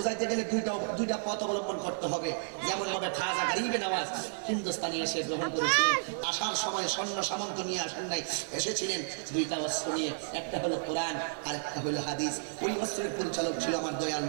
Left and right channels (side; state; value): left; silent; digital silence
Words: গেলে দুইটা পথ অবলম্বন করতে হবে। যেমন ভাবে খাজা গরিবে নওয়াজ হিন্দুস্তানি এসে গ্রহণ করেছিলেন, আসার সময় সৈন্য সামন্ত নিয়ে আসেন নাই, এসেছিলেন দুইটা অস্ত্র নিয়ে, একটা হলো কোরআন আর একটা হলো হাদিস। ওই অস্ত্রের পরিচালক ছিল আমার দয়াল